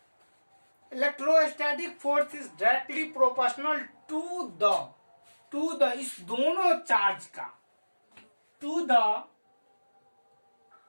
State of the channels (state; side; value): inverted; both; correlation -1.00